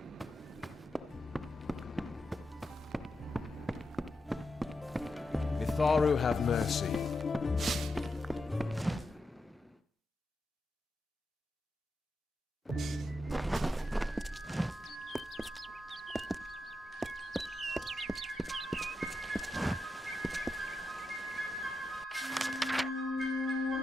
Mitharu have mercy.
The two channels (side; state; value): both; normal; correlation 0.87